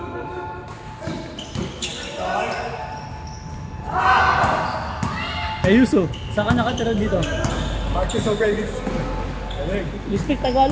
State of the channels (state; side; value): identical; both; correlation 1.00